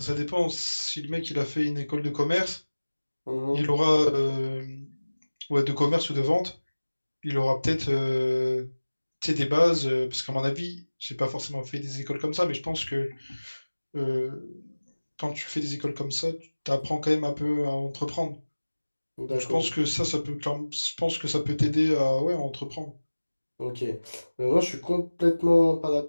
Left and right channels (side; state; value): both; inverted; correlation -1.00